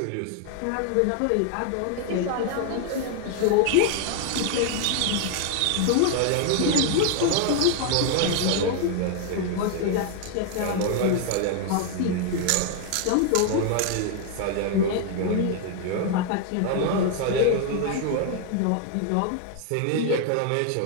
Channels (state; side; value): different; both; correlation 0.00